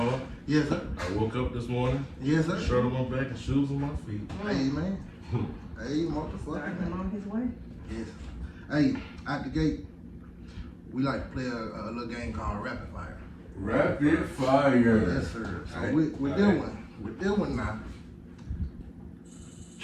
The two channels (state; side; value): identical; both; correlation 1.00